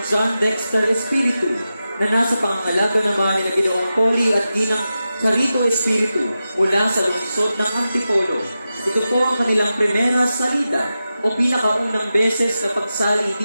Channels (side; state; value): both; inverted; correlation -0.92